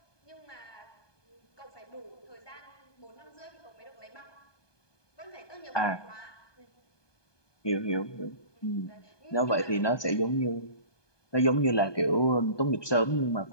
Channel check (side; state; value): right; late; 1.2 ms